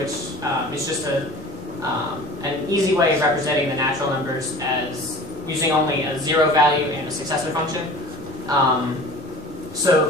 is just an easy way of representing the natural numbers as using only a zero value and a successor function.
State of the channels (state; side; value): normal; both; correlation 0.41